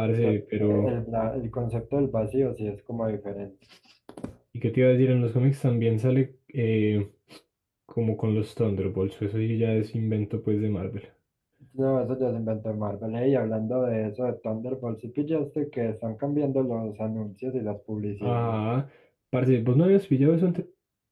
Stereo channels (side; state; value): both; identical; correlation 1.00